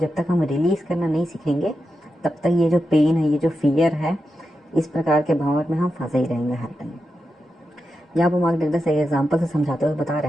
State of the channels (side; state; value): both; normal; correlation 0.89